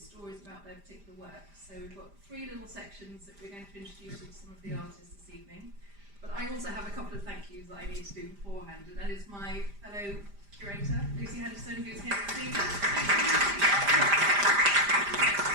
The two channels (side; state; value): left; late; 5.0 ms